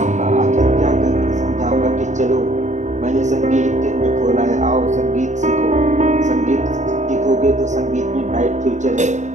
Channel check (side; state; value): left; late; 0.34 ms